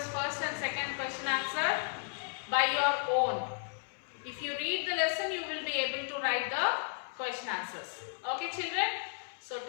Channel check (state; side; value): silent; right; 55 dB below the other